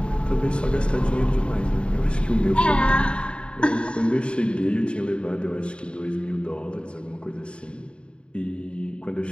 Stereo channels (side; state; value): right; late; 0.055 ms